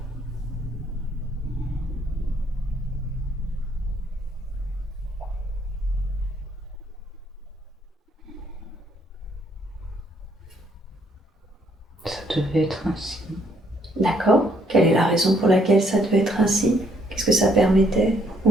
Ça devait être ainsi. D'accord. Quelle est la raison pour laquelle ça devait être ainsi? Qu'est-ce que ça permettait?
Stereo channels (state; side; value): normal; both; correlation 0.68